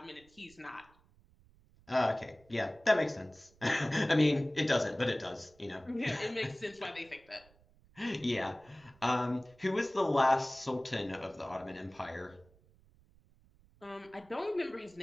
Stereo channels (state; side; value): noise; right; rumble, 29 dB below the sound